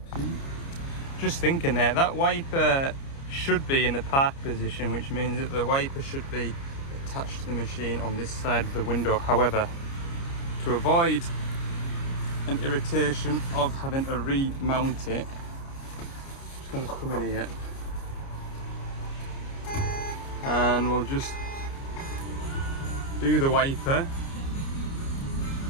Peach. Just thinking there, that wiper should be in the park position, which means that the wiper should be attached to the machine on this side of the window. However, to avoid an irritation of having to remount it, I'm just going to come in here and we'll just do the wiper,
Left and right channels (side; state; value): right; late; 29 ms